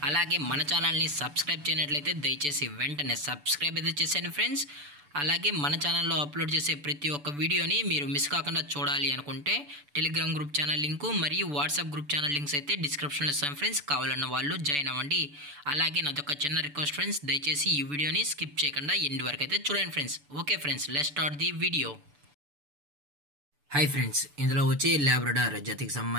అలాగే మన ఛానల్ని సబ్స్క్రైబ్ చేయనట్లయితే దయచేసి వెంటనే సబ్స్క్రైబ్ అయితే చేసేయండి ఫ్రెండ్స్. అలాగే మన ఛానల్లో అప్లోడ్ చేసే ప్రతి ఒక్క వీడియోని మీరు మిస్ కాకుండా చూడాలి అనుకుంటే టెలిగ్రామ్ గ్రూప్ ఛానల్ లింకు మరియు వాట్సాప్ గ్రూప్ ఛానల్ లింక్స్ అయితే డిస్క్రిప్షన్లో ఇస్తాను ఫ్రెండ్స్. కావాలన్న వాళ్ళు జాయిన్ అవ్వండి. అలాగే నాదొక చిన్న రిక్వెస్ట్ ఫ్రెండ్స్, దయచేసి ఈ వీడియోని స్కిప్ చేయకుండా ఎండ్ వరకు అయితే చూడండి friends. Okay friends, let's start the video. Hi friends, ఇందులో వచ్చి లాబ్రడార్ జాతికి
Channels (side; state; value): left; late; 6.9 ms